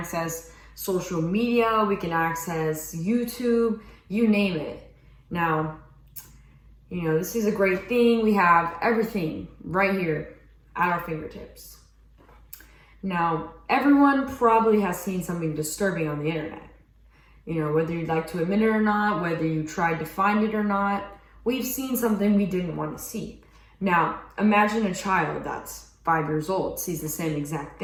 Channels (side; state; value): both; identical; correlation 1.00